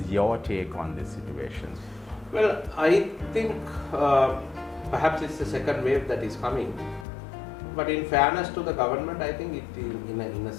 your take on this situation? Well, I think perhaps it's the second wave that is coming. But in fairness to the government, I think in a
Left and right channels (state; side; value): drops out; right; at 7.1 s